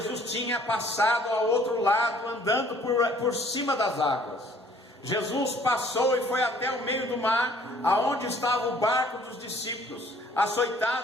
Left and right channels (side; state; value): both; normal; correlation 0.58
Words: tinha passado ao outro lado, andando por cima das águas. Jesus passou e foi até o meio do mar, aonde estava o barco dos discípulos,